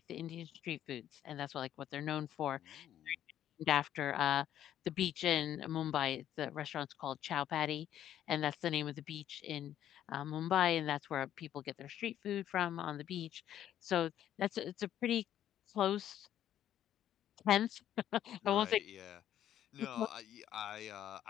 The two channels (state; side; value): quieter; right; 11.2 dB